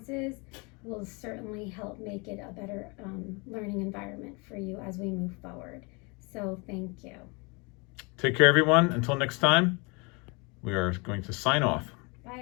will certainly help make it a better learning environment for you as we move forward. So thank you. Take care, everyone. Until next time, we are going to sign off.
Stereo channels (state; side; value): quieter; right; 29.8 dB